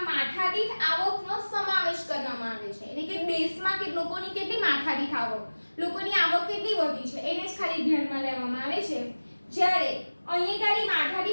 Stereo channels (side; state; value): both; inverted; correlation -1.00